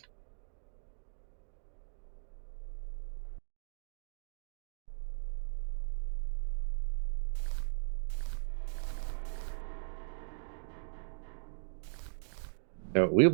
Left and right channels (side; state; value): left; silent; digital silence